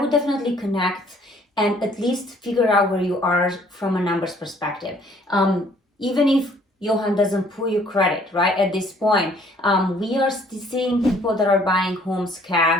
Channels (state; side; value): normal; both; correlation 0.60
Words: definitely connect and at least figure out where you are from a numbers perspective. Even if Johan doesn't pull your credit, right, at this point, we are seeing people that are buying homes